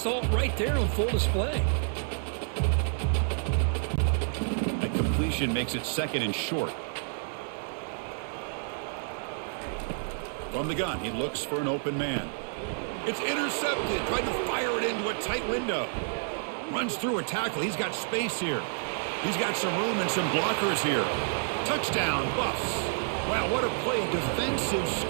it right there on full display. Makes it 2nd and short. From the gun, he looks for an open man. It's intercepted. Tried to fire it into a tight window. Runs through a tackle. He's got space here. He's got some room and some blockers here. Touchdown, Buffs. Wow, what a play. Defensive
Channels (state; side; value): silent; left; digital silence